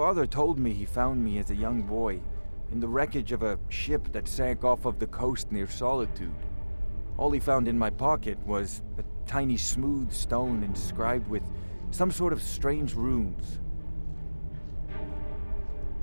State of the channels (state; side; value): inverted; both; correlation -1.00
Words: told me he found me as a young boy in the wreckage of a ship that sank off of the coast near Solitude. All he found in my pocket was a tiny smooth stone inscribed with some sort of strange runes.